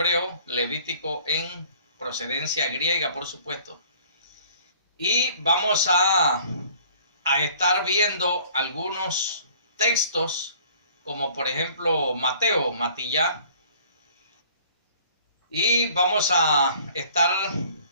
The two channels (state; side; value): inverted; both; correlation -0.52